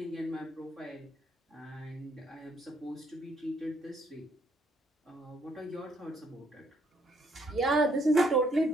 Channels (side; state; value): both; normal; correlation 0.69